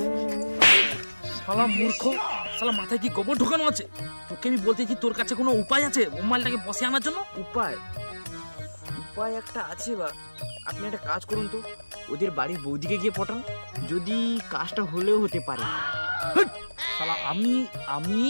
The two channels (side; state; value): both; inverted; correlation -1.00